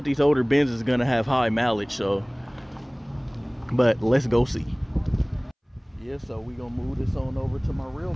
these older Benz is gonna have high mileage, so, but let's go see. Yeah, so we gonna move this on over to my real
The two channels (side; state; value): both; identical; correlation 1.00